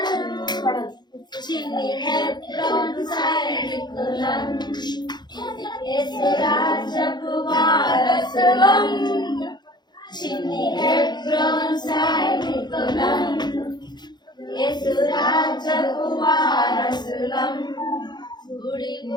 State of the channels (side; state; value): right; late; 0.21 ms